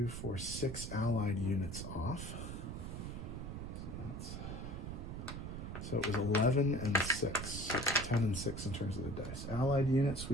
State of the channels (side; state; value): right; noise; rumble, 6 dB below the sound